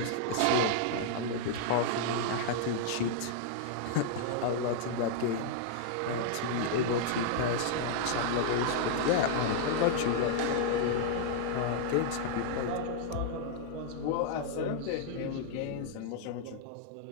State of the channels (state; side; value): different; both; correlation -0.01